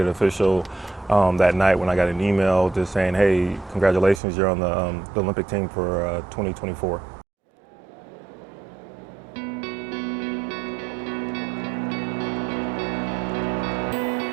official that night when I got an email just saying, hey, congratulations, you're on the Olympic team for 2024.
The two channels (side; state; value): left; drops out; at 4.2 s